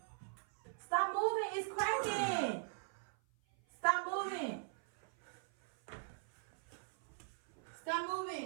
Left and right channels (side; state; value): left; silent; 51 dB below the other